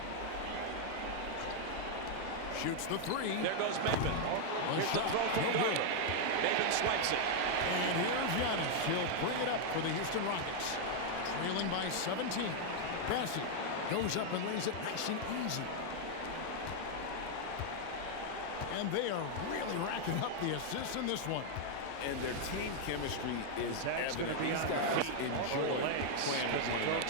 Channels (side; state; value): both; different; correlation 0.00